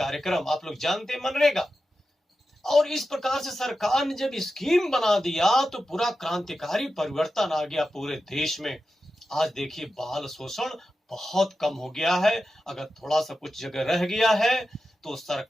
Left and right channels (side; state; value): both; normal; correlation 0.91